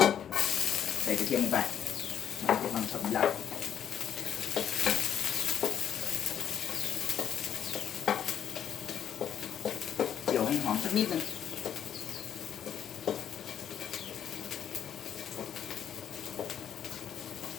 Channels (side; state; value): right; quieter; 9.4 dB